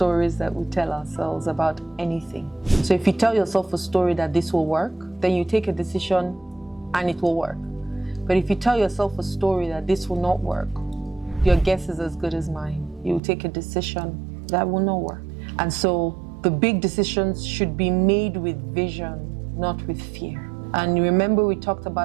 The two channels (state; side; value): drops out; left; at 13.2 s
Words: that we tell ourselves about anything. So if you tell yourself a story that this will work, then you take a decision and it will work. But if you tell yourself a story that this will not work, your guess is as good as mine. You will take a decision that will not work. And so the big decisions should be made with vision, not with fear. And remember, we talked